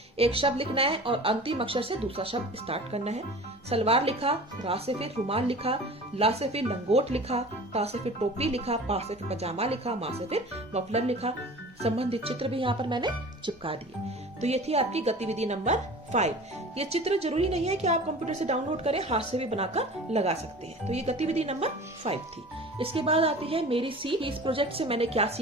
एक शब्द लिखना है और अंतिम अक्षर से दूसरा शब्द स्टार्ट करना है। सलवार लिखा, रा से फिर रुमाल लिखा, ला से फिर लंगोट लिखा, ता से फिर टोपी लिखा, पा से फिर पजामा लिखा, मा से फिर मफलर लिखा। संबंधित चित्र भी यहाँ पर मैंने चिपका दिए। तो ये थी आपकी गतिविधि नंबर 5। ये चित्र जरूरी नहीं है कि आप कंप्यूटर से डाउनलोड करें, हाथ से भी बनाकर लगा सकते हैं। तो ये गतिविधि नंबर 5 थी। इसके बाद आती है मेरी सीख। इस प्रोजेक्ट से मैंने क्या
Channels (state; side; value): normal; both; correlation 0.40